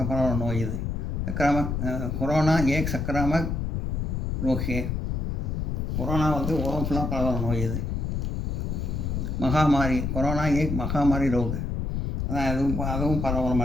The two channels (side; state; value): left; noise; rumble, 1 dB below the sound